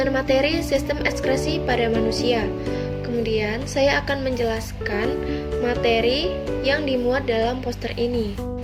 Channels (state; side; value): identical; both; correlation 1.00